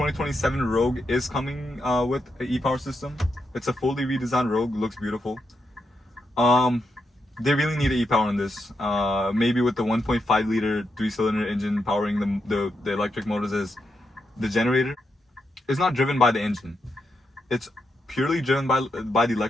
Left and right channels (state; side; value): normal; both; correlation 0.83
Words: Rogue is coming with an e-power system. It's a fully redesigned Rogue, looks beautiful. They really need an e-power in this. Maybe with the 1.5 liter 3-cylinder engine powering the electric motors as the generator. It's not driven by the engine. It's purely driven by the